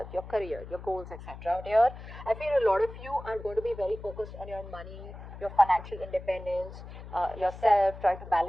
your career, your goals, etc. Here, I feel a lot of you are going to be very focused on your money, your financial independence, yourself, trying to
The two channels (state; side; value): noise; left; hum, 13 dB below the sound